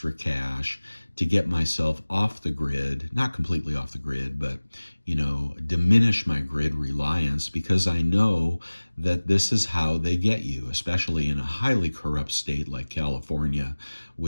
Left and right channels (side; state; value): both; inverted; correlation -1.00